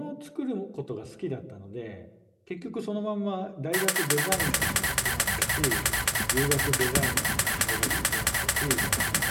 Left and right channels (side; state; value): both; identical; correlation 1.00